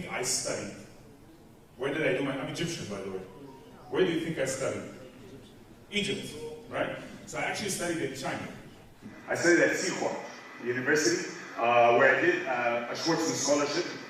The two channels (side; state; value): both; identical; correlation 1.00